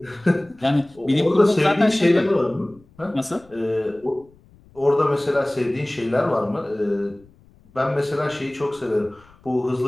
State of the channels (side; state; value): left; noise; rumble, 28 dB below the sound